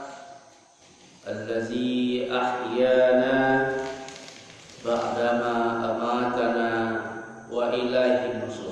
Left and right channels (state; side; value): identical; both; correlation 1.00